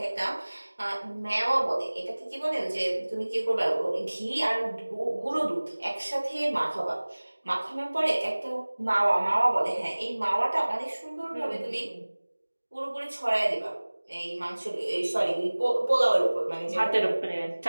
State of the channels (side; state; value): both; inverted; correlation -1.00